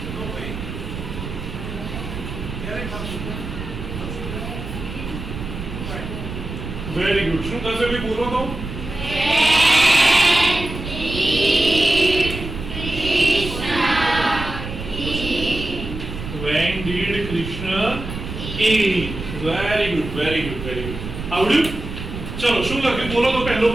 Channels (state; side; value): noise; right; rumble, 8 dB below the sound